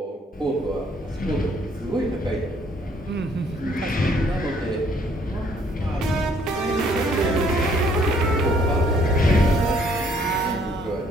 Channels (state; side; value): normal; both; correlation 0.64